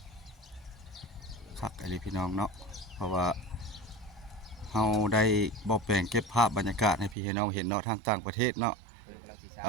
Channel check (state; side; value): drops out; left; at 7.2 s